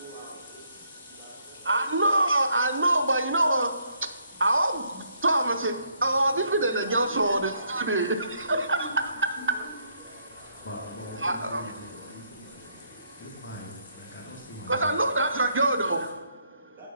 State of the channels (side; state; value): both; inverted; correlation -0.70